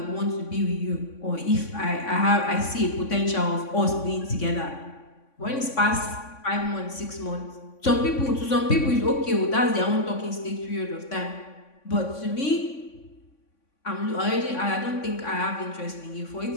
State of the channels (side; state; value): right; late; 3.5 ms